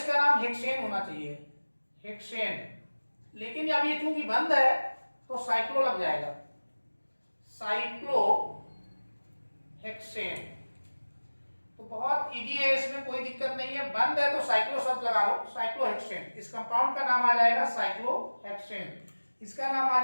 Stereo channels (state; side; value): inverted; both; correlation -1.00